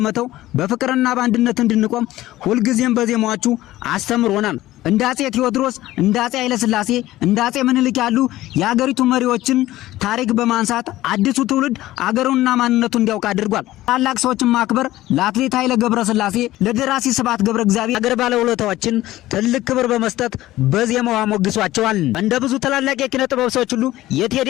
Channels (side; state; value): right; quieter; 15.8 dB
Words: በፍቅርና በአንድነት እንድንቆም ሁልጊዜም በዜማዎቹ አስተምሮናል። እንደ አጼ ቴዎድሮስ፣ እንደ አጼ ኃይለ ሥላሴ፣ እንደ አጼ ምኒልክ ያሉ የሀገሪቱ መሪዎችን ታሪክ በማንሳት አዲሱ ትውልድ አገሩንና ማንነቱን እንዲያውቅ አድርጓል። ታላቅ ሰዎችን ማክበር ለአትሌት ኃይለ ገብረስላሴ፣ ለደራሲ ስብሐት ገብረ እግዚአብሔር አገር ባለውለታዎችን ትልቅ ክብር በመስጠት በዜማው አሞግሷቸዋል። እንደ ብዙ ታላላቅ የኪነ ጥበብ ሰዎች ሁሉ የቴዲ